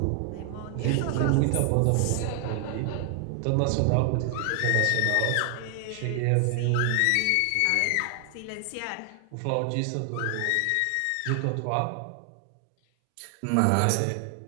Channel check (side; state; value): both; different; correlation 0.00